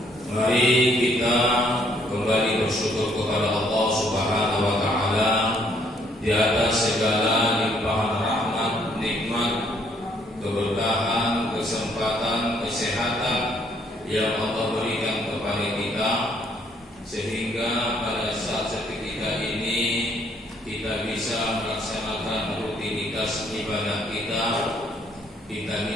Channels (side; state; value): both; normal; correlation 0.67